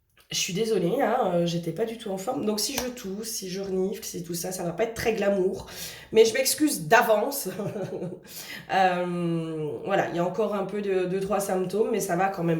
je suis désolée, hein, j'étais pas du tout en forme. Donc si je tousse, si je renifle, si tout ça, ça va pas être très glamour. Mais je m'excuse d'avance. Voilà, il y a encore un peu de trois symptômes, mais ça va quand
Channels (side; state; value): both; identical; correlation 1.00